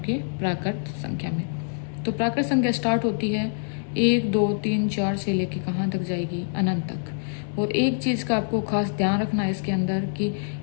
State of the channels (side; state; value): right; silent; digital silence